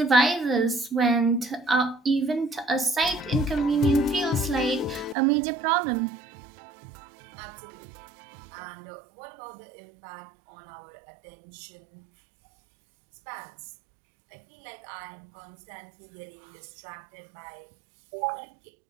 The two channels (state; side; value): drops out; left; at 5.2 s